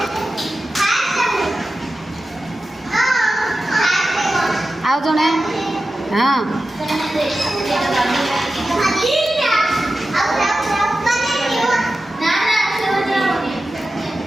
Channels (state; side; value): normal; both; correlation 0.93